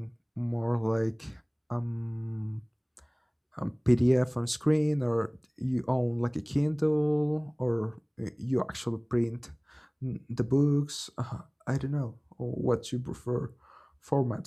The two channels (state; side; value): identical; both; correlation 1.00